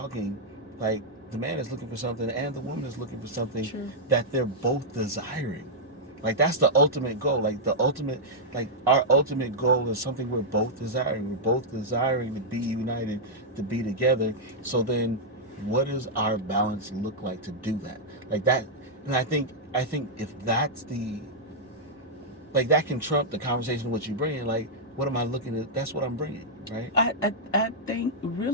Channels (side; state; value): both; normal; correlation -0.07